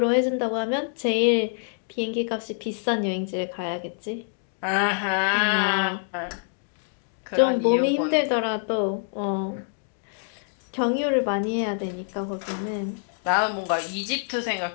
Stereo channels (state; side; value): silent; right; digital silence